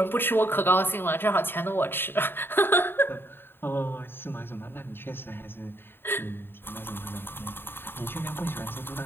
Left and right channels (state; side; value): late; right; 0.10 ms